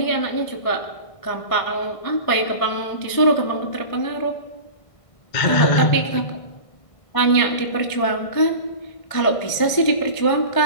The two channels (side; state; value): right; late; 1.6 ms